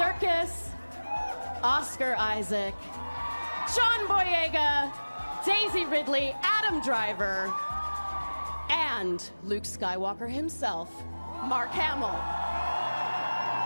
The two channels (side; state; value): both; inverted; correlation -1.00